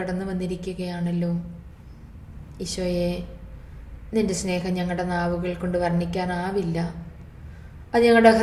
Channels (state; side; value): identical; both; correlation 1.00